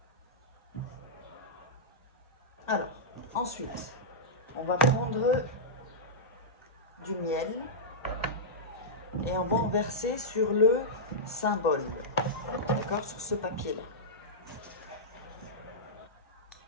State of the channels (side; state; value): both; normal; correlation -0.13